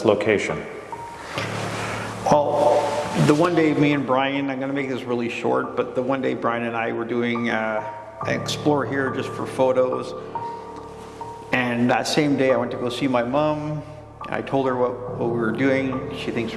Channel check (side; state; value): both; identical; correlation 1.00